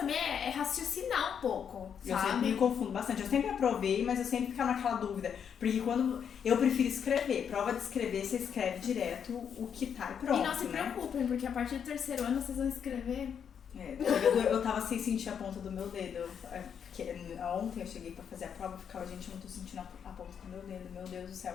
é raciocinar um pouco, Eu sabe? sempre me confundo bastante. Eu sempre aprovei, mas eu sempre ficava naquela dúvida. Porque quando eu prefiro escrever, prova de escrever, você escreve direto o que tá e pronto, E não se preocupem, porque a partir do terceiro ano vocês vão escrever. Eu tava sem sentir a ponta do meu dedo. Porque ontem eu cheguei pra fazer a prova e ficava, gente, eu não tô sentindo a ponta do meu dedo, meu Deus do céu.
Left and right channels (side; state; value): right; quieter; 7.7 dB